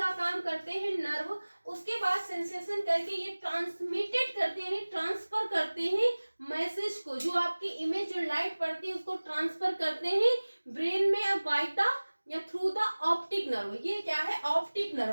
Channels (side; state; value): both; inverted; correlation -1.00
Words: काम करते हैं नर्व। उसके बाद सेंसेशन करके ये ट्रांसमिटेड करते हैं, ट्रांसफर करते हैं मैसेज को, जो आपकी इमेज, जो लाइट पड़ती है उसको ट्रांसफर करते हैं ब्रेन में बाय द या थ्रू द ऑप्टिक नर्व। ये क्या है, ऑप्टिक